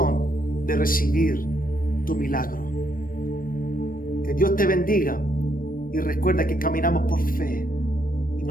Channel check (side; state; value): right; late; 0.41 ms